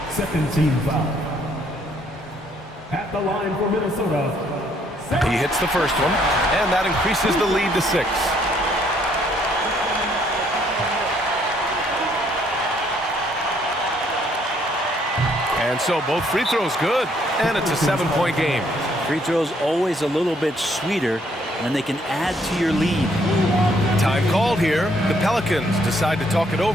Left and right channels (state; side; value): normal; both; correlation 0.67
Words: Second team foul. At the line for Minnesota. He hits the first one, and that increases the lead to 6. And so both free throws good, and it's a 7-point game. Free throws always a little bit sweeter when they can add to your lead. Time called here. The Pelicans decide to talk it